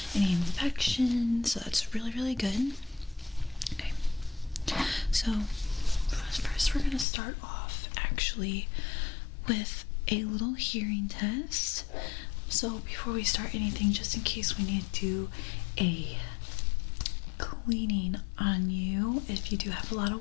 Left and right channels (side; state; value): right; drops out; at 7.1 s